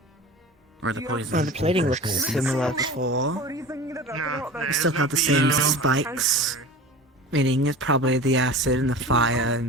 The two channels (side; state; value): both; normal; correlation 0.36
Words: Or the poison. Well, the plating looks similar before. We still have the same spikes. Meaning it's probably the acid and the fire